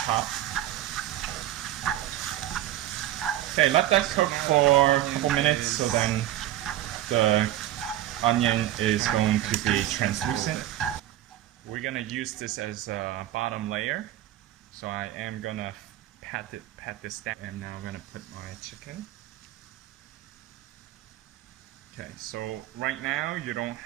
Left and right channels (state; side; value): quieter; left; 13.7 dB